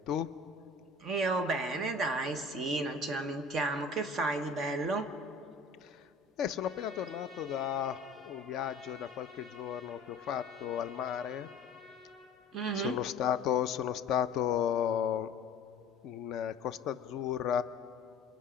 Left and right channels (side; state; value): right; quieter; 3.5 dB